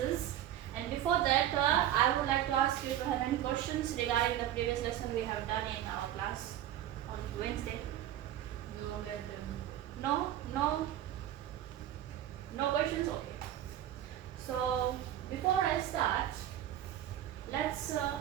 And before that, I would like to ask you to have any questions regarding the previous lesson we have done in our class on Wednesday. No, madam. No questions. Okay. So before I start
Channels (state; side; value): quieter; left; 11.9 dB